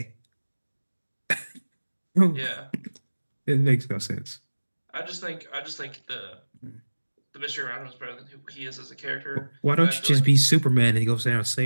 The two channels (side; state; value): both; inverted; correlation -1.00